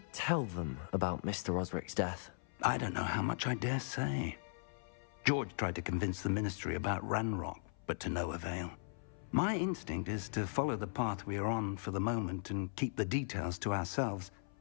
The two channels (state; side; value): silent; right; 52 dB below the other